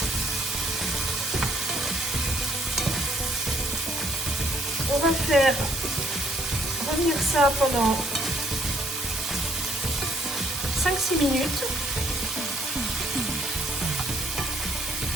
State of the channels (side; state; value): right; noise; hiss, 7 dB below the sound